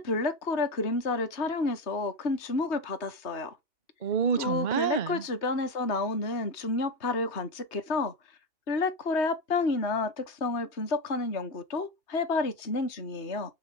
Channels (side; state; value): right; late; 2.8 ms